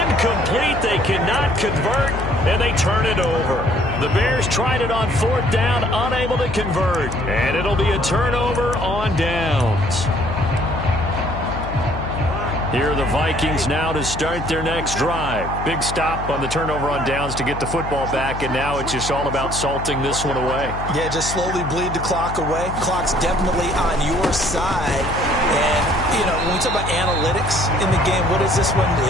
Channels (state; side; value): noise; left; hum, 7 dB below the sound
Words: They cannot convert, and they turn it over. The Bears tried it on 4th down, unable to convert. And it'll be a turnover on downs. Here are the Vikings now to start their next drive. Big stop on the turnover on downs to get the football back, and now it's just all about salting this one away. Yeah, just slowly bleed the clock away. Clock's definitely on your side. And, you know, when we talk about analytics in the game, what is this one?